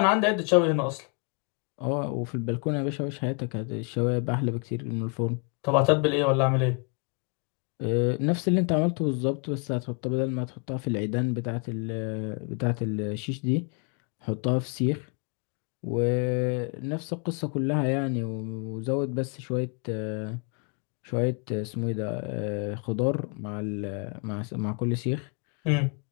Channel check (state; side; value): quieter; right; 36.8 dB